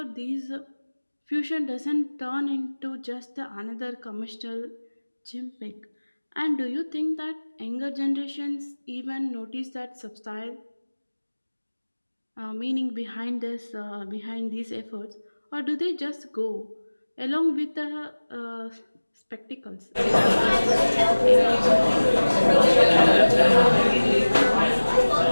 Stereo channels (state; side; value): inverted; both; correlation -1.00